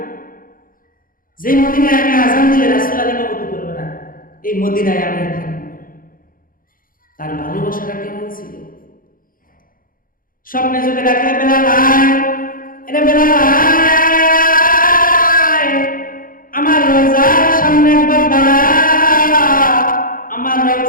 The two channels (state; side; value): late; right; 0.41 ms